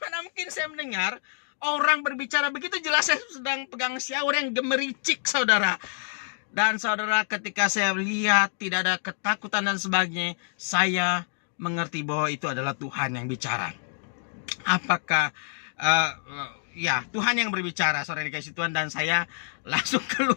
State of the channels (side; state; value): right; silent; digital silence